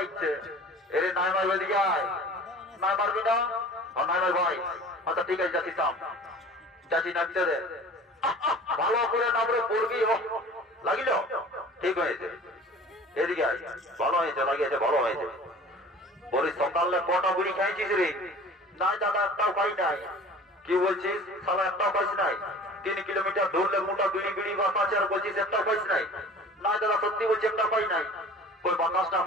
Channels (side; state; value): both; normal; correlation 0.43